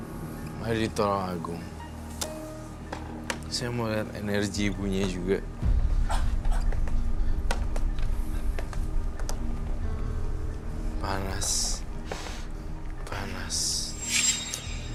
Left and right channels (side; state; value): both; identical; correlation 1.00